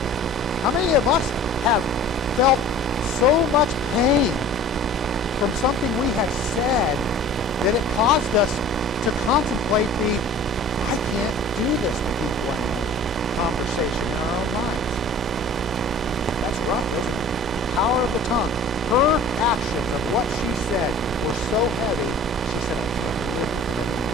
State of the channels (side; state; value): both; normal; correlation 0.44